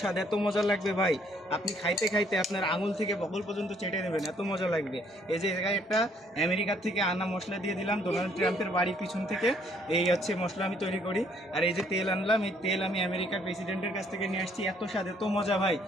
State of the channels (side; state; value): both; normal; correlation 0.65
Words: স্বাদ এত মজা লাগবে ভাই। আপনি খাইতে খাইতে আপনার আঙুল থেকে বগল পর্যন্ত চেটে দেবেন, এত মজা লাগবে। এই যে জায়গায় একটা আমেরিকার থেকে আনা মশলা দিয়ে দিলাম, ডোনাল্ড ট্রাম্পের বাড়ির পিছন থেকে। এই হচ্ছে মশলা আমি তৈরি করি। আর এই যে তেল আনলাম, এই তেল আমি আমেরিকার প্রেসিডেন্টের কাছ থেকে নিয়ে আসছি। এত স্বাদ এত মজা ভাই,